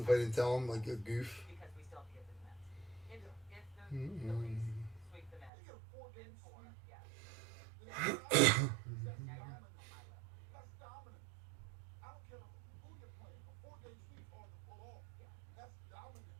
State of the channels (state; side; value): drops out; left; at 5.5 s